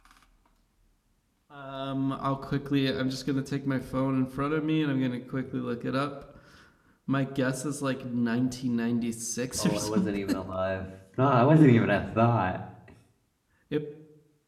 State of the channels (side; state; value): both; identical; correlation 1.00